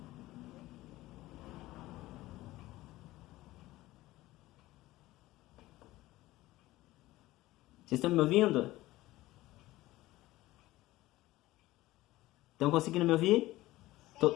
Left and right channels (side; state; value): right; quieter; 17.4 dB